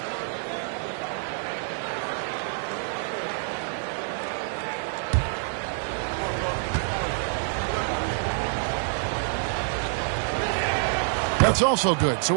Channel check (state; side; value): silent; left; 60 dB below the other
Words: That's also good, so